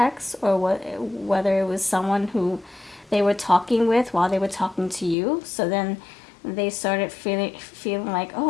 or whether it was someone who they were talking with while they were talking to you. So then they started feeling like,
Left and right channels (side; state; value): right; drops out; at 5.2 s